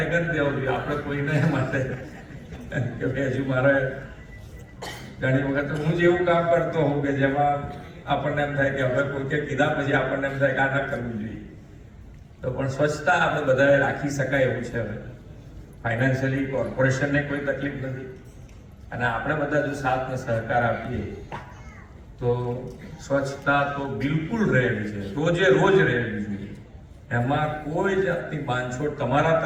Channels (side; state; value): both; identical; correlation 1.00